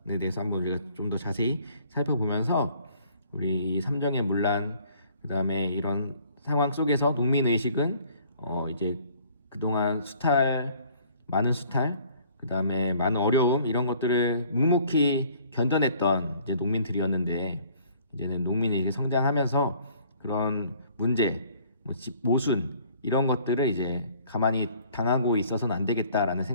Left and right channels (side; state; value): both; inverted; correlation -0.57